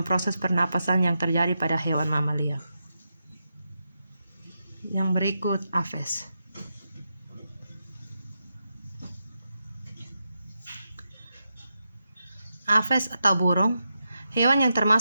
proses pernapasan yang terjadi pada hewan mamalia. Yang berikut Aphes. Aphes atau burung. Hewan yang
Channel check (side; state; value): both; inverted; correlation -0.86